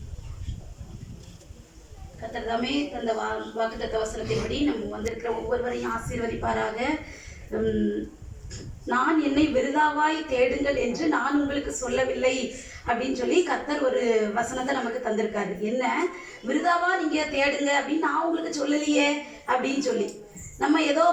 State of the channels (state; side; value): identical; both; correlation 1.00